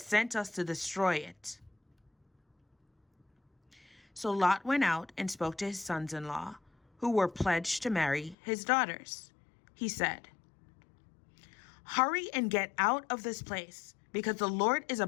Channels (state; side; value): drops out; right; at 8.3 s